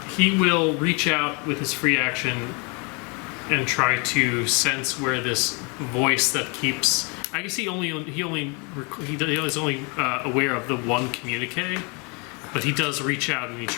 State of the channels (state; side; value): quieter; right; 32.7 dB